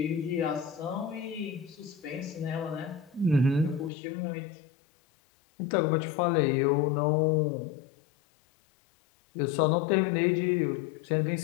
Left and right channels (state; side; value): drops out; right; at 3.9 s